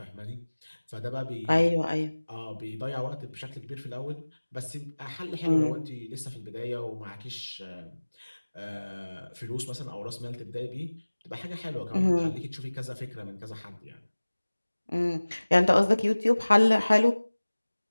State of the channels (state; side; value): inverted; both; correlation -1.00